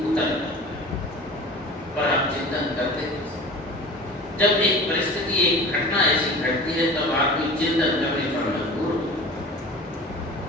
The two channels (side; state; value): both; normal; correlation 0.38